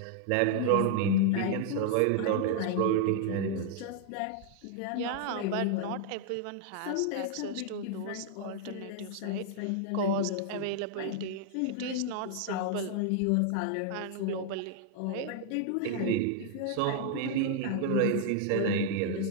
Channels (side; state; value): both; different; correlation 0.00